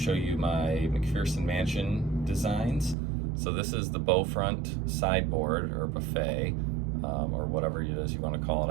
you my McPherson Mansion designs. So this is the bow front sideboard or buffet, or whatever it is you want to call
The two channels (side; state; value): left; drops out; at 3.0 s